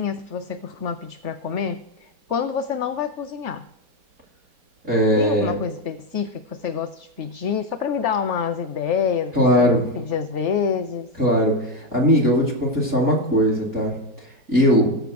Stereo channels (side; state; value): left; late; 4.4 ms